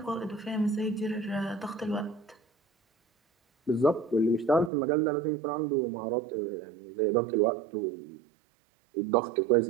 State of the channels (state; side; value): drops out; left; at 4.7 s